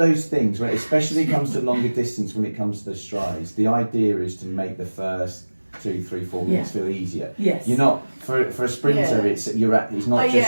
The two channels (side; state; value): both; inverted; correlation -1.00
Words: things, when especially comes to longer distance, when it comes to the strides, the idea is to make the first 2, 3, 4 minutes feel easier. Yes. You're not for a sprinter. Yeah. It's not Oh, just